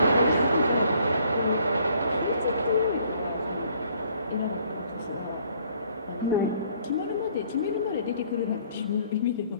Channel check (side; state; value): both; inverted; correlation -0.62